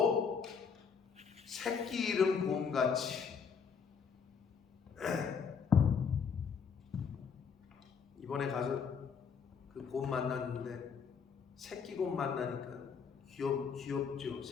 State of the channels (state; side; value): quieter; right; 6.2 dB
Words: 새끼 잃은 곰같이 이번에 가서 그 곰 만났는데 새끼 곰 만나니까 귀엽죠.